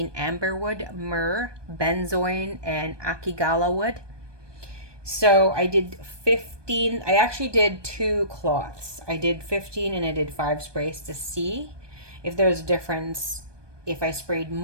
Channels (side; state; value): left; late; 1.2 ms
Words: amberwood, myrrh, benzoin, and akigala wood. So I did 15. I actually did 2 cloths. I did 15 and I did 5 sprays to see if there's a difference, if I sprayed